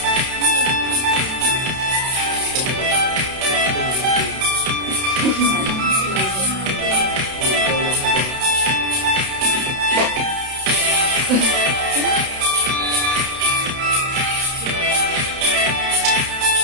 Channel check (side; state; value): left; late; 31 ms